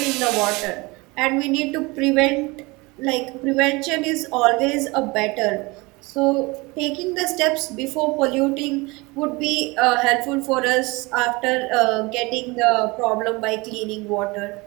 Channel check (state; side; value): quieter; left; 24.6 dB